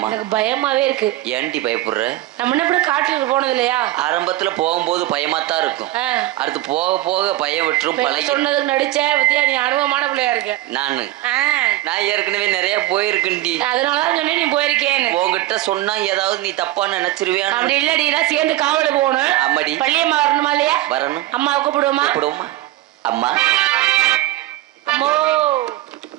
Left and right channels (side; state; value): left; quieter; 16.1 dB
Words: எனக்கு பயமாவே இருக்கு. ஏன்டி பயப்படுற? நம்ம என்ன காட்டுக்கு போனது இல்லையா? ஆரம்பத்துல போகும்போது பயமாத்தான் இருக்கும். அடுத்து போக போக பயம் விட்டுரும். பழகி சொன்னதுக்கு நடிச்ச பத்தியா, நீ அனுபவமான பிள்ளையா இருக்க. நான் ஏற்கனவே நிறைய போயிருக்கேன்டி. அதனாலதான் சொன்னேன் நீ போயிருக்கேன்னு. உங்ககிட்ட சொன்னா ஏதாவது நீ தப்பா நினைச்சிருவியா? அப்படி இல்லடி, நான் சேர்ந்து காவலுக்கு போகணும். அம்மாடி பள்ளியம்மா வரணுமா இல்லையா? வரணும். அம்மாவை கூப்பிடுவோமா? கூப்பிடுவோமா? அம்மா அம்மோ.